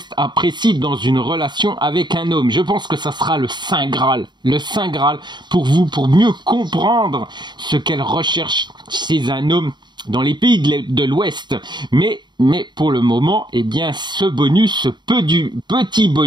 apprécient dans une relation avec un homme. Je pense que ça sera le Saint Graal pour vous, pour mieux comprendre ce qu'elles recherchent chez un homme dans les pays de l'Ouest. Mais pour le moment, ce petit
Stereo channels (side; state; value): left; late; 0.22 ms